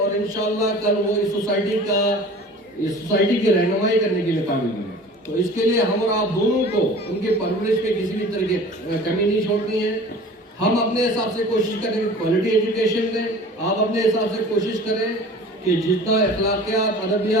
इंशाल्लाह कल वो इस सोसाइटी की रहनुमाई करने के लिए काबिल बने। तो इसके लिए हम और आप दोनों को उनके परवरिश में किसी भी तरह की कमी नहीं छोड़नी है। हम अपने हिसाब से कोशिश करें क्वालिटी एजुकेशन दें, आप अपने हिसाब से कोशिश करें कि जितना अखलाकियात,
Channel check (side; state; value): both; normal; correlation 0.42